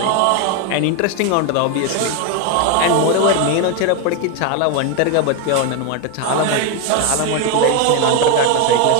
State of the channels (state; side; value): different; both; correlation 0.01